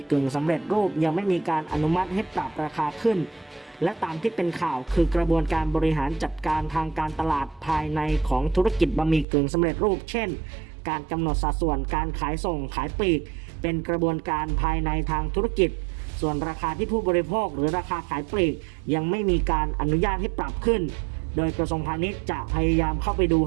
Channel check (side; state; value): left; drops out; at 9.2 s